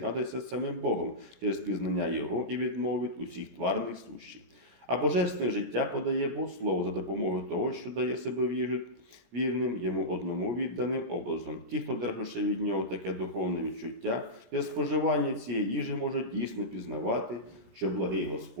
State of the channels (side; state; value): left; late; 17 ms